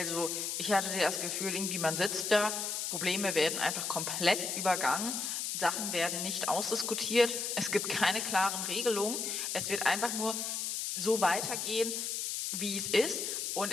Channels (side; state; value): left; noise; hiss, 2 dB below the sound